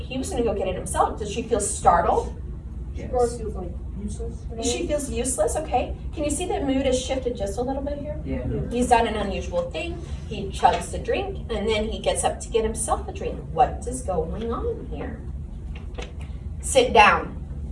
was gonna go get it himself, does she feel startled? Or feels like useless. She feels useless, okay? Can you see that mood has shifted just a little bit here? Yeah. He's done an unusual thing. He chugs the drink, and then he gets up to get himself a drink. What is going on here? Sit down,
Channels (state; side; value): identical; both; correlation 1.00